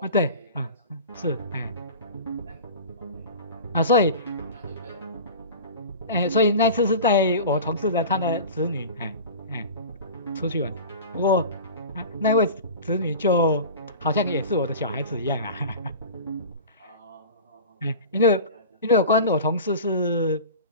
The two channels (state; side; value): inverted; both; correlation -0.35